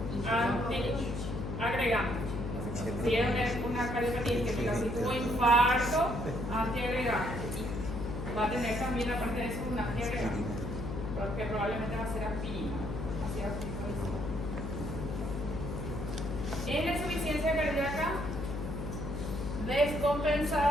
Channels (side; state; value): left; noise; hum, 5 dB below the sound